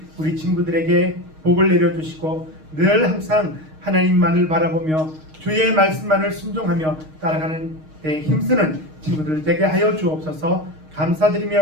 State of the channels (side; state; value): left; late; 6.4 ms